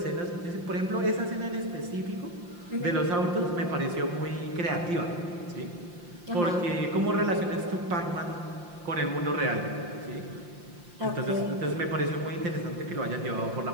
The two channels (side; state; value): left; late; 5.7 ms